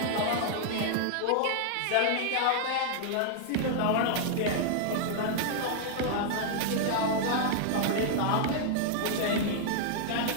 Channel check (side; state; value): both; different; correlation -0.01